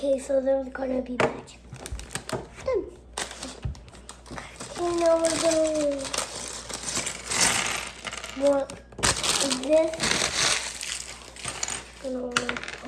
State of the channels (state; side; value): identical; both; correlation 1.00